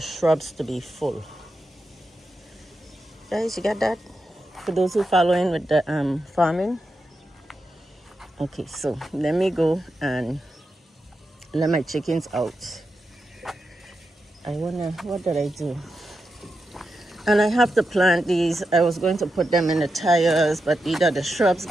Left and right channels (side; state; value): both; normal; correlation 0.88